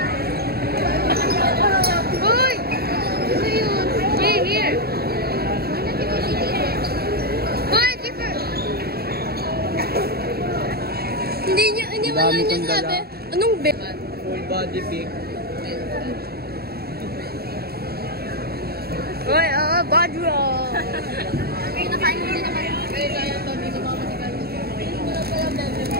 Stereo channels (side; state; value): left; late; 0.46 ms